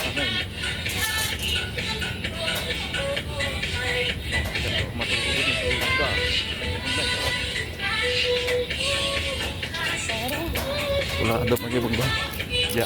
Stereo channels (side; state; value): both; identical; correlation 1.00